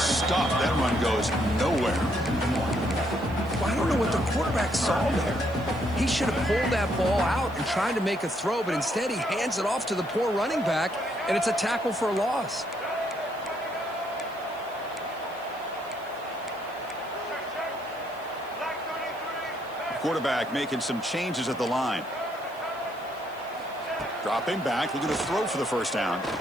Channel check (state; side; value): noise; right; hiss, 25 dB below the sound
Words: That run goes nowhere. Well, I don't know what the quarterback saw there. He should have pulled that ball out and tried to make a throw, but instead he hands it off to the poor running back, and it's a tackle for a loss. Quarterback making some changes at the line. Dropping back, looking to throw for the first down.